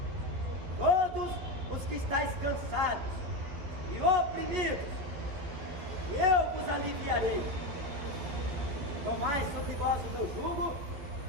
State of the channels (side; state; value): left; late; 11 ms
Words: todos os que estáis cansados e oprimidos, e eu vos aliviarei. Tomai sobre vós o meu jugo